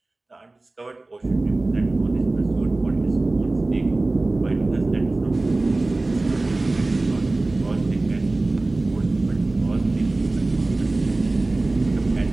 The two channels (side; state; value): left; quieter; 3.0 dB